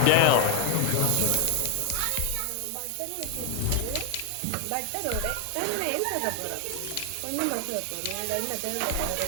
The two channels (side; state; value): both; different; correlation 0.01